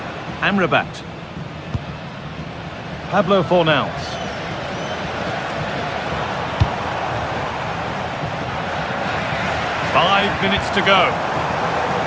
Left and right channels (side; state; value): both; identical; correlation 1.00